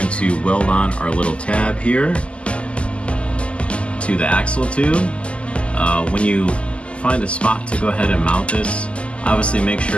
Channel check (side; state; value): right; late; 0.056 ms